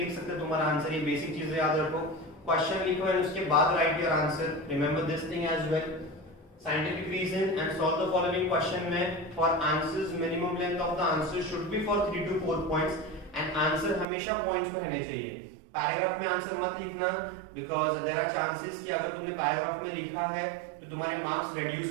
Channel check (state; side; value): drops out; left; at 14.1 s